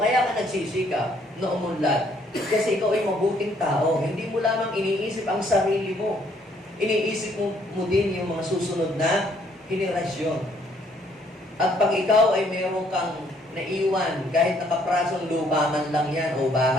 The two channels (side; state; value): both; normal; correlation 0.66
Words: ka nagsisikap na umunlad. Kasi ikaw ay mabuting tao. Hindi mo lamang iniisip ang sarili mo. Iniisip mo din yung mga susunod na henerasyon. At pag ikaw ay mayroon kang naiwan, kahit nakaprasong lupa man lang yan o